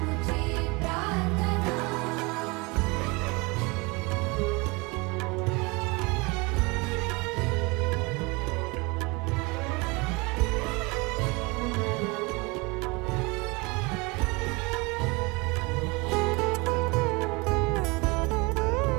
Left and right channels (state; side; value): quieter; left; 26.8 dB